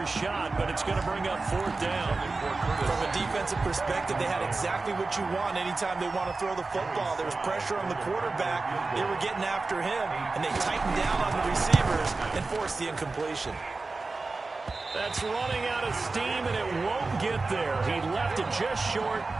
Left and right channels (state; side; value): quieter; left; 3.7 dB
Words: shot, but it's going to bring up 4th down. From a defensive perspective, they had exactly what you want anytime they want to throw the football. There was pressure on the quarterback. They were getting after him, and they tightened down on the receivers and forced the incompletion. That's running out of steam, and it won't get there. He left it just short.